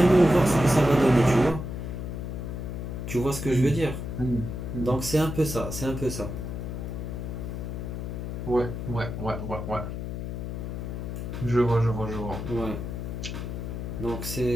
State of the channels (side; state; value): left; noise; hum, 5 dB below the sound